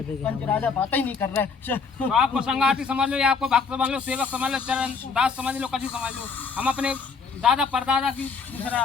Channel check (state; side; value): quieter; right; 5.2 dB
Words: पंच राजा बात ही नहीं कर रहे तो आपको संगाती समझ लो या आपको भक्त समझ लो सेवक समझ लो चरण दास समझ लो कभी समझ लो हम अपने दादा परदादा की पूछ रहे